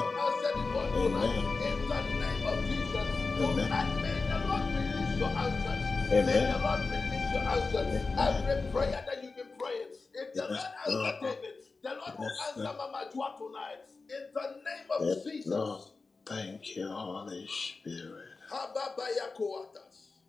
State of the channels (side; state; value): right; quieter; 4.0 dB